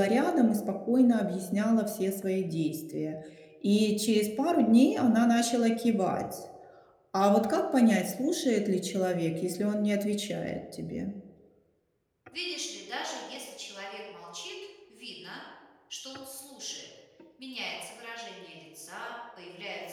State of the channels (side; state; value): both; identical; correlation 1.00